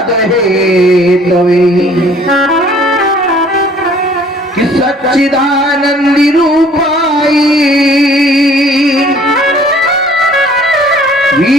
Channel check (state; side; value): normal; both; correlation 0.55